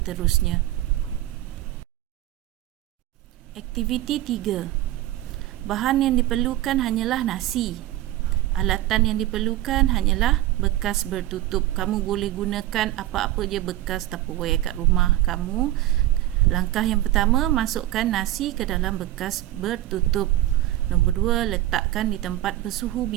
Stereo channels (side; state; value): left; quieter; 14.9 dB